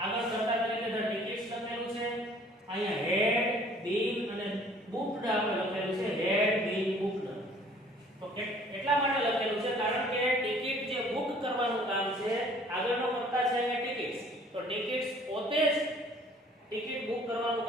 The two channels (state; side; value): normal; both; correlation 0.55